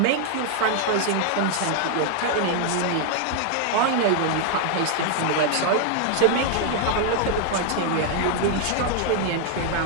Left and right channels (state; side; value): different; both; correlation 0.00